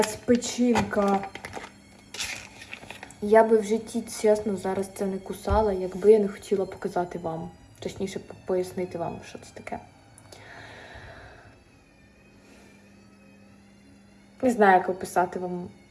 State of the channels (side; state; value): both; identical; correlation 1.00